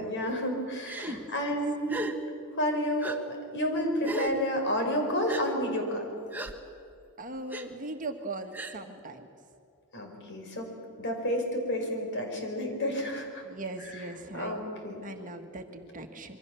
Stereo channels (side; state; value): both; normal; correlation 0.02